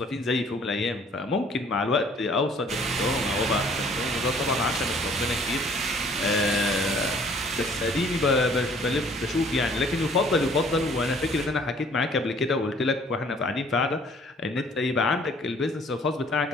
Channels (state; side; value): normal; both; correlation 0.57